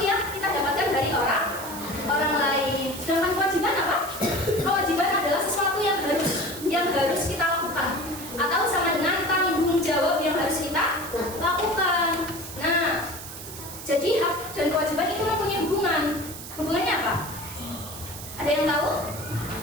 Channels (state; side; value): noise; right; hiss, 12 dB below the sound